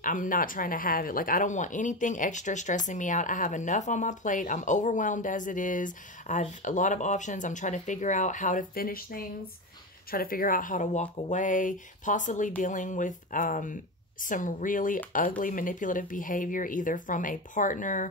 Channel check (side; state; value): both; normal; correlation 0.19